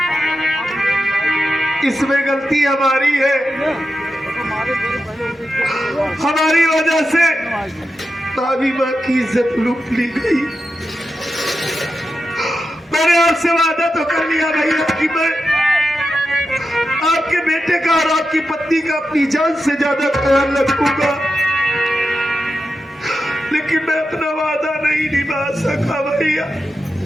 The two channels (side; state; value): both; normal; correlation 0.90